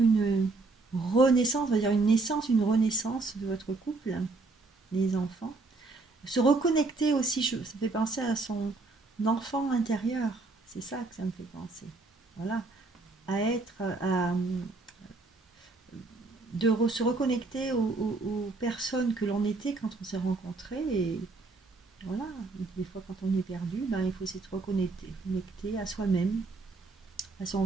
une renaissance, on va dire une naissance, une renaissance de votre couple, les enfants. Se reconnecter aussi, ça fait penser à son enfant intérieur, c'est ça que ça me fait penser. Voilà, se reconnecter aux personnes que l'on était quand on s'est rencontrés, et voilà, des fois quand on est perdu, il faut s'être reconnecter à soi-même, à son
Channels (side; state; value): left; quieter; 3.6 dB